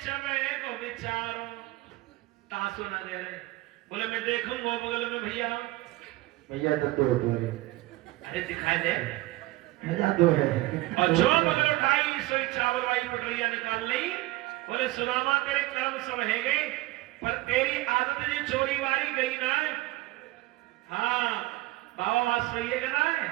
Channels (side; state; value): left; quieter; 19.1 dB